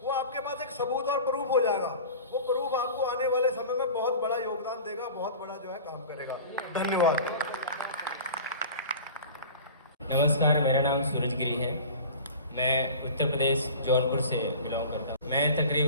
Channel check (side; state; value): both; inverted; correlation -0.38